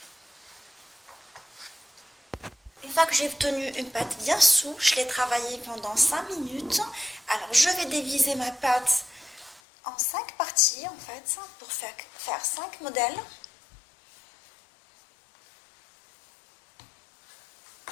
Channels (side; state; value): right; drops out; at 9.6 s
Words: Une fois que j'ai obtenu une pâte bien souple, je l'ai travaillée pendant 5 minutes. Alors je vais diviser ma pâte en 5 parties en fait, pour faire 5 modèles.